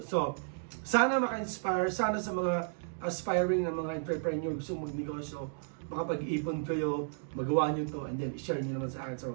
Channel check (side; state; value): left; silent; digital silence